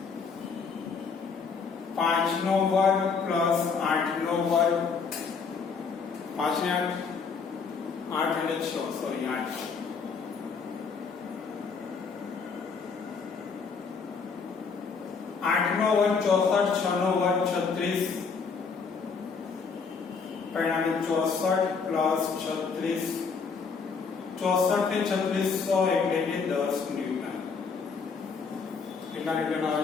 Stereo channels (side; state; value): right; quieter; 5.3 dB